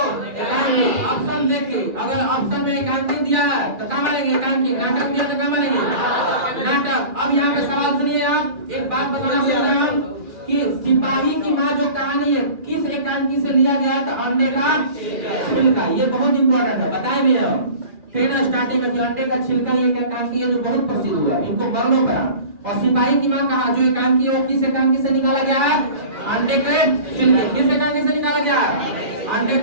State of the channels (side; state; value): left; late; 2.4 ms